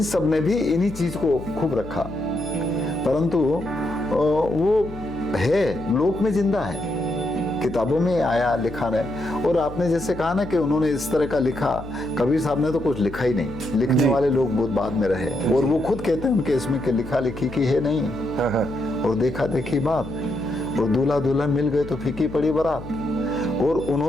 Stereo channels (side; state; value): left; noise; hum, 13 dB below the sound